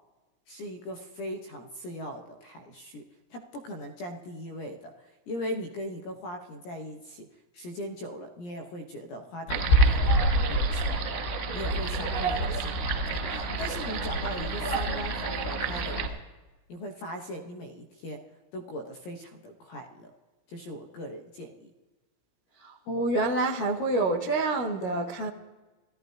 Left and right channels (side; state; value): right; late; 17 ms